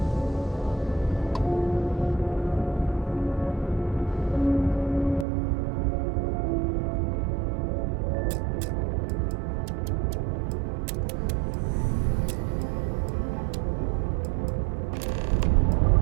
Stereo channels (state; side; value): drops out; left; at 5.2 s